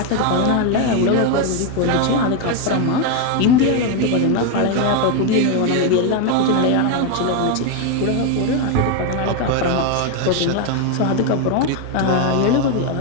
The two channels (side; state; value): both; different; correlation 0.01